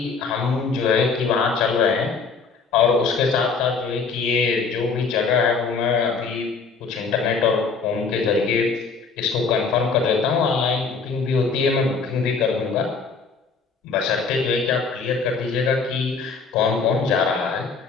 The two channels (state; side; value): quieter; right; 4.8 dB